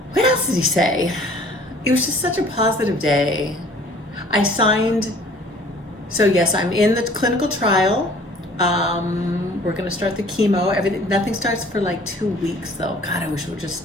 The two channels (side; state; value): both; normal; correlation 0.52